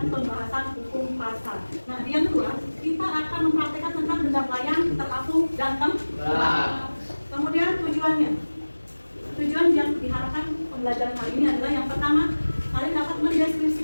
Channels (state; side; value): inverted; both; correlation -1.00